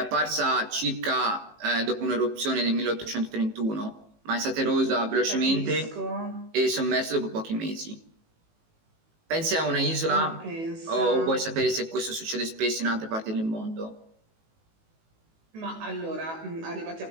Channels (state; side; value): late; left; 18 ms